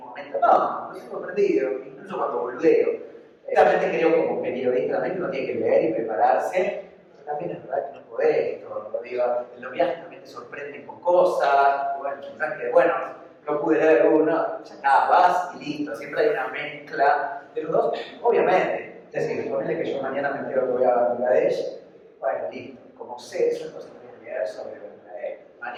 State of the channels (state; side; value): identical; both; correlation 1.00